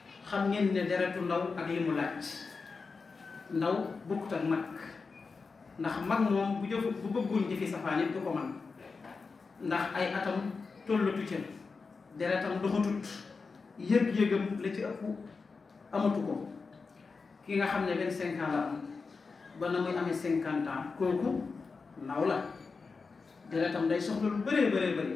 xam ngeen ne deretu ndaw ak li mu laaj. ndaw bokkut ak mag ndax mag moom bu bëggoon jëfi safaan it du ko man ndax ay atam tollatu ca deretam doxatut yëg-yëgam la ci ëpp amatu ko. ki nga xam ne 25 ans la am ba na muy amee 50 ans kooku ndaw la deretam day soxla lu bëree bëree bëri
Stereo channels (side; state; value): right; quieter; 4.6 dB